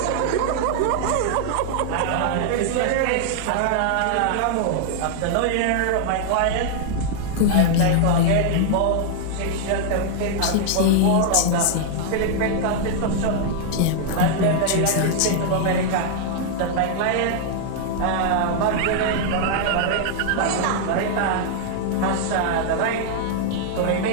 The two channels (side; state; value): both; different; correlation -0.01